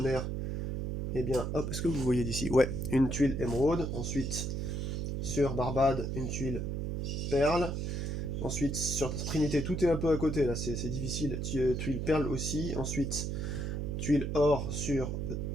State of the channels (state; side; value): noise; right; hum, 2 dB below the sound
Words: et bien hop, est-ce que vous voyez d'ici? Ouais, une tuile émeraude, ensuite sur Barbade, une tuile perle, ensuite sur Trinité, tout est un peu à côté, là c'est difficile, tuile perle aussi, ensuite tuile or sur